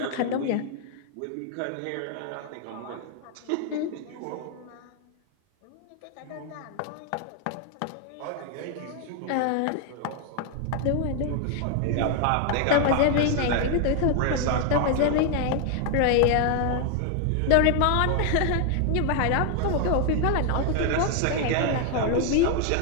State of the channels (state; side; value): different; both; correlation 0.00